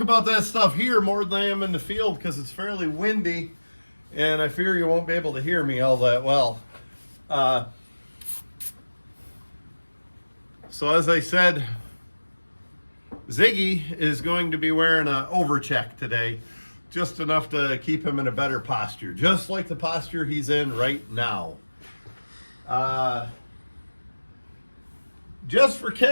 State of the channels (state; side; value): inverted; both; correlation -1.00